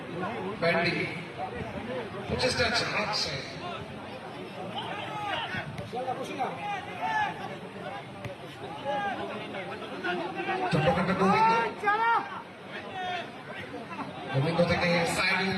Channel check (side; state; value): both; identical; correlation 1.00